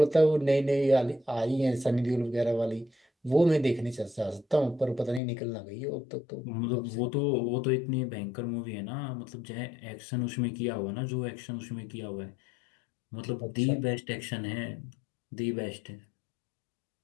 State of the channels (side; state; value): right; drops out; at 5.2 s